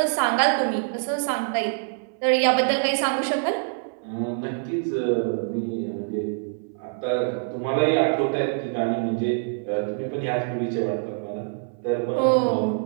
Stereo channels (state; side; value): silent; left; 62 dB below the other